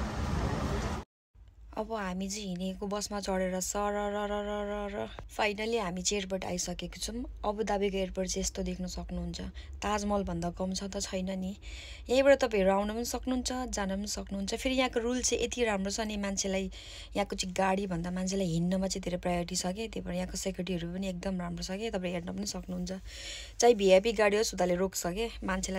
अब हामी चाहिँ हिँडेको बसमा चढेर सरर finally हामी चाहिँ airport आइसकेको छौँ। अबुधाबीको एयरपोर्ट चाहिँ यस्तो देख्न सक्नुहुन्छ। ताजमहल भन्दा कम छ त छैन नि। यहीँबाट तपाईँहरू आउन पनि सक्नुहुन्छ, जान पनि सक्नुहुन्छ। फेरि यहाँको रुल चाहिँ यति राम्रो छ नि, मान्छेलाई यहाँको चाहिँ गाडी भन्दा मान्छेलाई हिँड्नमा चाहिँ धेरै प्रायोरिटी छ कि। त्यही भएर यहाँको सेक्युरिटीहरू पनि एकदम राम्रो छ कि। तपाईँ हेर्न पनि सक्नुहुन्छ। चाहे भिआइपी गाडी होस् उताले रोक्छ कि,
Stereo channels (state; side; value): identical; both; correlation 1.00